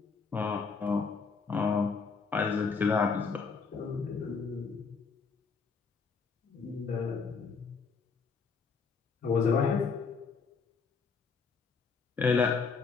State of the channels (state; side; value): quieter; right; 5.1 dB